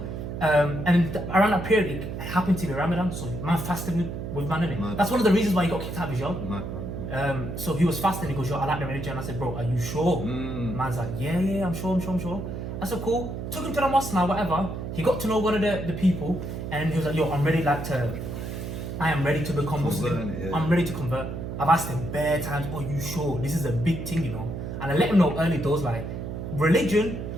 Around that period, it happened to be Ramadan, so man fasted with man, innit? Mad. That's one of the reasons why he got kicked out of his job. Mad. So he was fasting. He goes, yo, I like the religion. I said, bro, are you sure? Man's like, yeah, I'm sure. I said, cool. Took him to the mosque now, whatever. He got to know one of the people, and he was like, yo, I am ready to become Muslim. Yeah. I'm ready to convert. I've asked him bare times, are you sure? This is a big thing, you know. And I let him know early doors, like, religion,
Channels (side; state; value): right; noise; hum, 6 dB below the sound